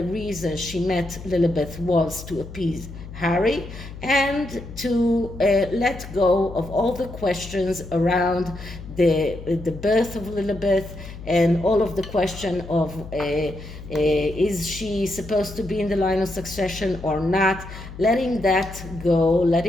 reason she met Lilibet was to appease Harry and to let go of all the questions around the birth of Lilibet and all of the question of is she supposed to be in the line of succession or not, letting that go,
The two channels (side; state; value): left; noise; hum, 13 dB below the sound